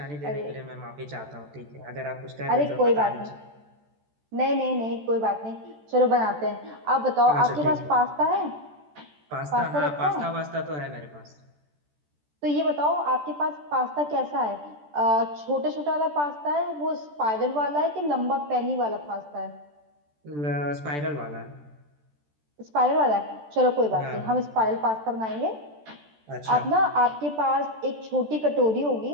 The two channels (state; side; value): late; left; 14 ms